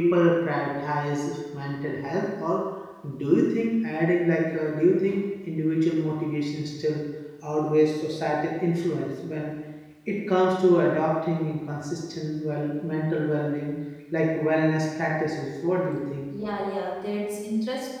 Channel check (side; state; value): both; identical; correlation 1.00